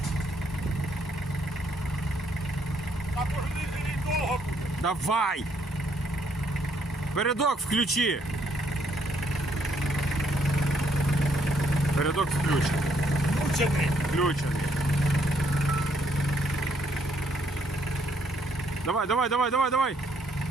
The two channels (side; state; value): both; normal; correlation 0.70